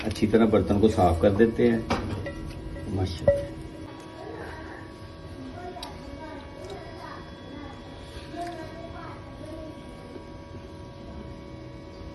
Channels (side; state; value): both; identical; correlation 1.00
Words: अच्छी तरह बर्तन को साफ कर देते हैं। माशाल्लाह।